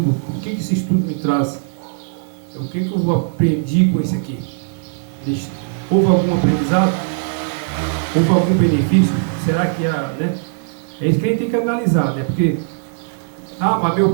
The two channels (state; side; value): silent; left; digital silence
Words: estudo me traz, o que eu aprendi com isso aqui. Houve algum aprendizado? Houve algum benefício? Será que né? É isso que a gente tem que analisar, né? Porque mas meu